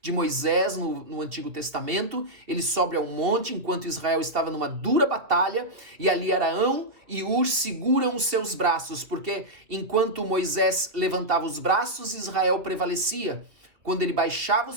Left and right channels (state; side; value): late; left; 2.7 ms